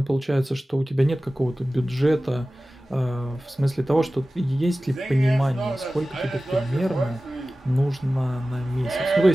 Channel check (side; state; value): both; normal; correlation 0.96